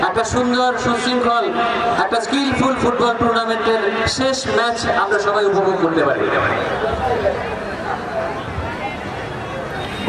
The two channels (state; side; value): identical; both; correlation 1.00